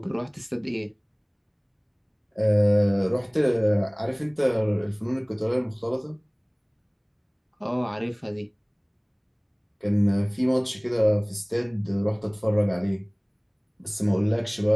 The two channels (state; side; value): identical; both; correlation 1.00